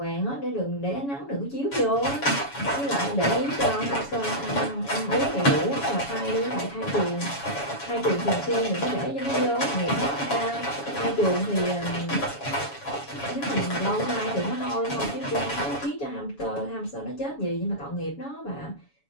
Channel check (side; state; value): right; late; 7.1 ms